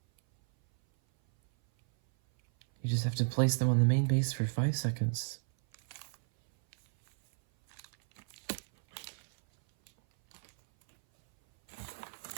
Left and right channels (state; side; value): silent; left; 56 dB below the other